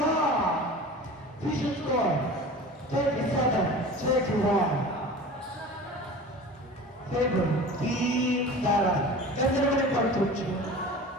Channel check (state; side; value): normal; both; correlation 0.37